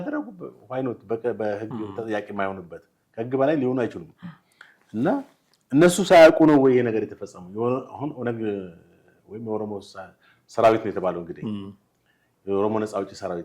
ዋይኖት በህግ ተጠያቂ የማይሆንበት ከህግ በላይ ሊሆኑ አይችሉም። እና እነሱ ሳያውቁ ነው ወይ ይሄ ነገር የተፈጸመው? አሁን ኦነግ ወይም የኦሮሞ ሰራዊት ነው የተባለው እንግዲህ የኦሮሞ ነፃ አውጪ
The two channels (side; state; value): both; identical; correlation 1.00